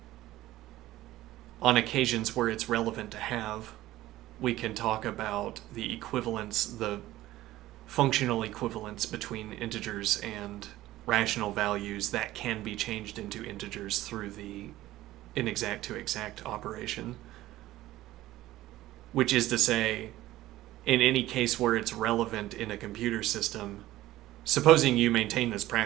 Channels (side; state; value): left; quieter; 15.7 dB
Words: on occasions where it's relevant to have, we can talk about the equivalence, the functional equivalence between integers and rational values that can be changed into integers through the inexact to exact operation. Which is to say, in any case where it's relevant in a computer system, supposing you maintain this